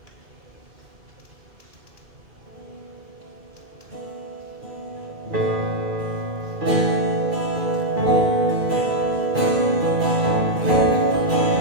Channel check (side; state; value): left; late; 2.4 ms